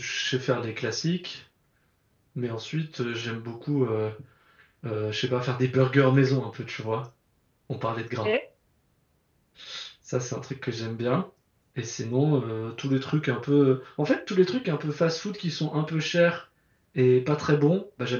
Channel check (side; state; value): both; identical; correlation 1.00